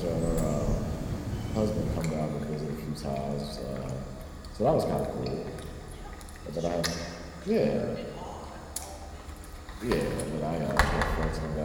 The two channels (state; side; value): identical; both; correlation 1.00